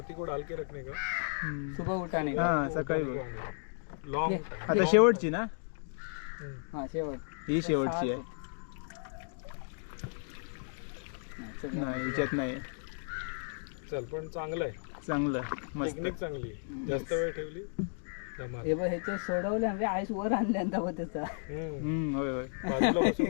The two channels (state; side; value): silent; right; digital silence